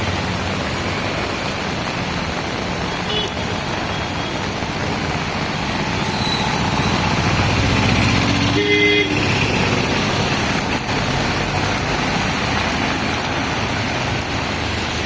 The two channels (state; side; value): identical; both; correlation 1.00